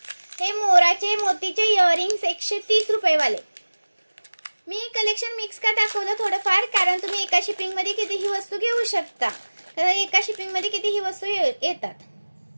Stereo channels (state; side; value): inverted; both; correlation -1.00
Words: हे मोराचे मोतीचे इयरिंग्स 130 रुपये वाले, मी कलेक्शन मिक्स का दाखवलं थोडंफार, कारण तुम्ही एका शिपिंग मध्ये कितीही वस्तू घेऊ शकता। तर एका शिपिंग मध्ये कितीही वस्तू येतात।